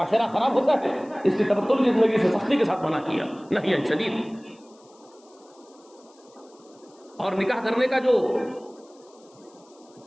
خراب ہوتا ہے, اس لیے تبتل کی زندگی سے سختی کے ساتھ منع کیا, نہی شدید. اور نکاح کرنے کا جو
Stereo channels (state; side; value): noise; left; hiss, 30 dB below the sound